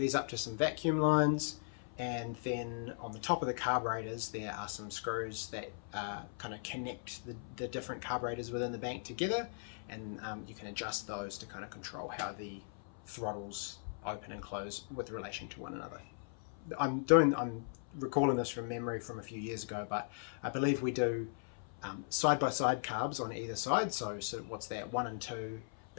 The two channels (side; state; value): right; silent; 52 dB below the other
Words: up to some vacuum lines, and then on the top of the carburetors there are some screws that kind of connect the different carburetors within the bank together, and you can adjust those to kind of control how the throttles open and close with relation to one another. I'm recalling this from memory from a few years ago, but I believe we do side-by-side carbs on either side. So what's that, 1 and 2,